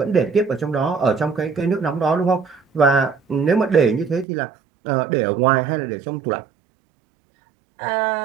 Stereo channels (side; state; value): left; drops out; at 4.2 s